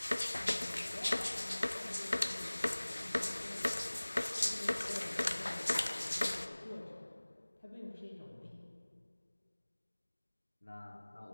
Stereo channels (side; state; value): both; inverted; correlation -1.00